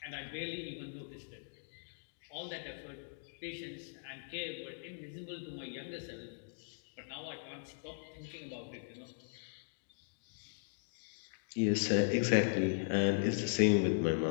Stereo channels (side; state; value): right; silent; digital silence